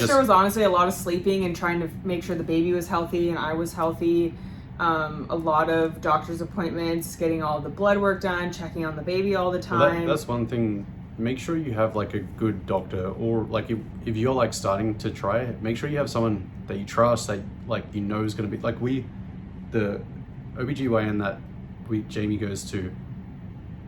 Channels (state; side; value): identical; both; correlation 1.00